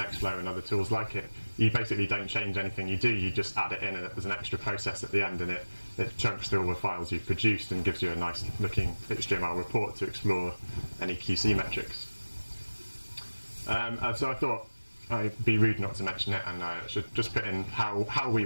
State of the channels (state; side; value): inverted; both; correlation -1.00